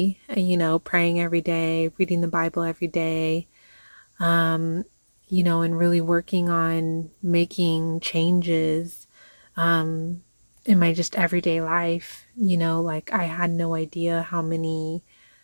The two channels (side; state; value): both; inverted; correlation -1.00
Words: praying every day, reading the Bible every day, um and really working on making changes um in my just everyday life. Like I had no idea how many